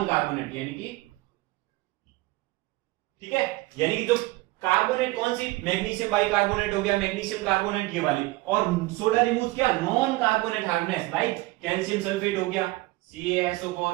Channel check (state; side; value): quieter; left; 20.8 dB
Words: कार्बोनेट यानी कि, ठीक है, यानी कि जो कार्बोनेट कौन सी, मैग्नीशियम बाइकार्बोनेट हो गया, मैग्नीशियम कार्बोनेट ये वाली, और सोडा रिमूव्स क्या, non carbonate hardness, like calcium sulphate हो गया, CaSO4,